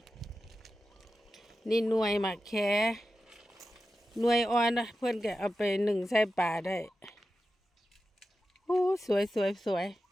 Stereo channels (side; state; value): both; normal; correlation 0.92